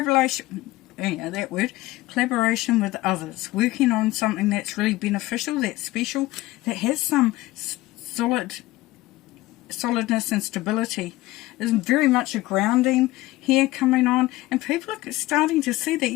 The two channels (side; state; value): right; quieter; 18.2 dB